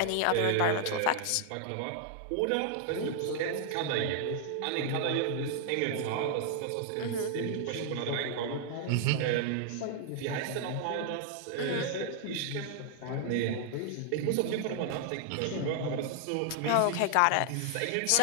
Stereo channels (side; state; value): both; different; correlation 0.00